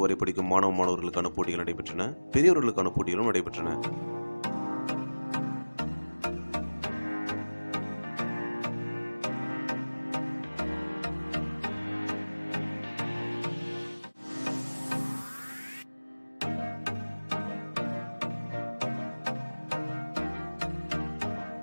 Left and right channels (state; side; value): inverted; both; correlation -1.00